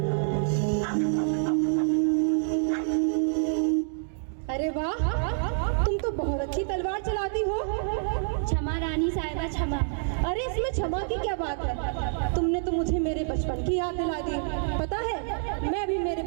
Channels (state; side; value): silent; left; digital silence